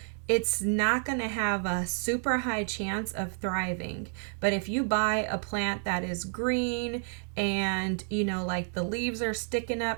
it's not going to have a super high chance of thriving. But if you buy a plant that is green and, like the leaves are sticking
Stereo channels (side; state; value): left; silent; 57 dB below the other